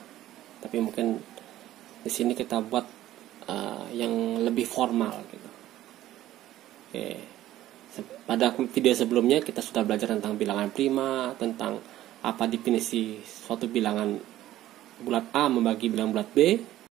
Tapi mungkin di sini kita buat yang lebih formal gitu. Oke. Pada video sebelumnya kita sudah belajar tentang bilangan prima, tentang apa definisi suatu bilangan bulat A membagi bilangan bulat B.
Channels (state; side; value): quieter; left; 14.1 dB